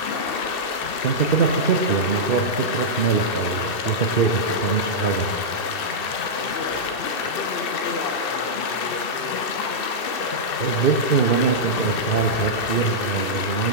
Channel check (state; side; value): late; right; 2.6 ms